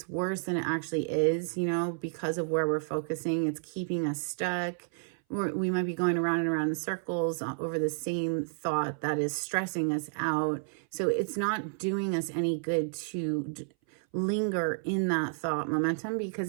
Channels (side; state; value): left; silent; 57 dB below the other